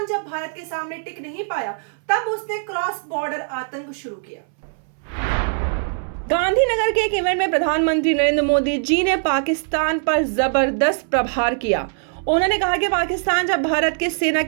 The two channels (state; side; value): silent; left; 65 dB below the other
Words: जब भारत के सामने टिक नहीं पाया तब उसने क्रॉस बॉर्डर आतंक शुरू किया। गांधीनगर के एक इवेंट में प्रधानमंत्री नरेंद्र मोदी जी ने पाकिस्तान पर जबरदस्त प्रहार किया। उन्होंने कहा कि पाकिस्तान जब भारत की सेना